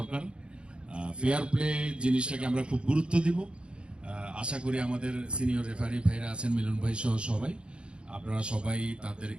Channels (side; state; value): left; late; 0.055 ms